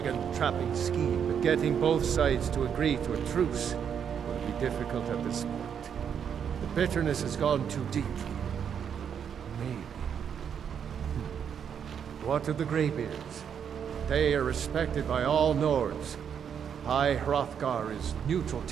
scheme, but getting both sides to agree to a truce will be difficult at this point. The bitterness has gone too deep. Maybe. What of the Graybeards? They are respected by all Nords. High Hrothgar is neutral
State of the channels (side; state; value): left; quieter; 7.9 dB